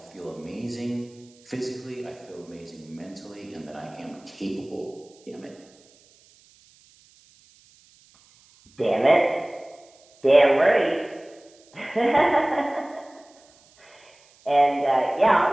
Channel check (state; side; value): noise; right; hiss, 29 dB below the sound